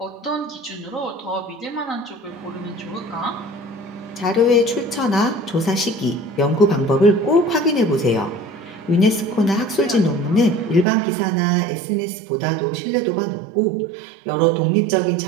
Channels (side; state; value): left; drops out; at 10.9 s